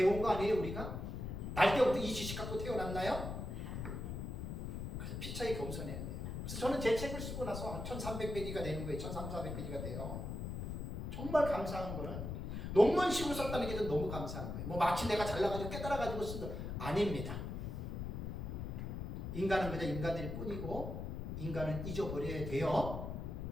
거 아니에요, 우리가? 날 때부터 이 지식 갖고 태어났나요? 그래서 피차에 겸손해야 돼요. 그래서 저는 제 책을 쓰고 나서 한 1300페이지가 되는 거예요. 1300, 1400페이지가 돼요. 정말 감사한 거는 논문식으로 썼다는 게 너무 감사한 거예요. 뭐 마치 내가 잘나가지고 깨달아가지고 쓴 거 아닙니다. 인간은 그저 인간일 뿐이고 인간은 잊어버려야 돼요.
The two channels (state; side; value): noise; left; rumble, 5 dB below the sound